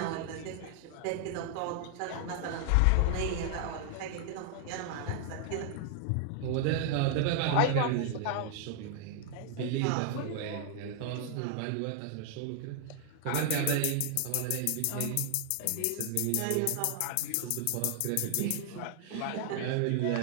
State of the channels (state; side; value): different; both; correlation 0.00